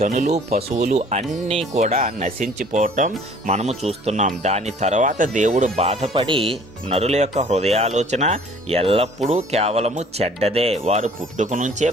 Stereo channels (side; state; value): both; normal; correlation 0.53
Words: పశువులు అన్నీ కూడా నశించిపోవటం మనము చూస్తున్నాం. దాని తర్వాత దేవుడు బాధపడి నరుల యొక్క హృదయాలోచన ఎల్లప్పుడూ కేవలము చెడ్డదే, వారు పుట్టుక నుంచే